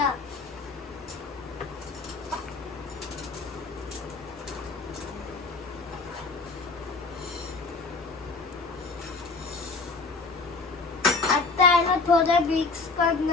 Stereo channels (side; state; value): right; quieter; 4.0 dB